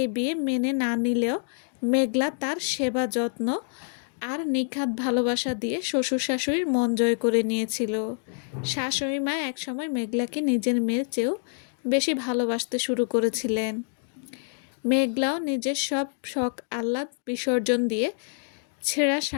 বিয়ে মেনে না নিলেও মেঘলা তার সেবা যত্ন আর নিখাত ভালোবাসা দিয়ে শ্বশুর শাশুড়ির মন জয় করে নিয়েছিল। শাশুড়ি মা একসময় মেঘলাকে নিজের মেয়ের চেয়েও বেশি ভালোবাসতে শুরু করেছিলেন। মেঘলাও নিজের সব শখ আহ্লাদ বিসর্জন দিয়ে ছেঁড়া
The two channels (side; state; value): right; silent; 60 dB below the other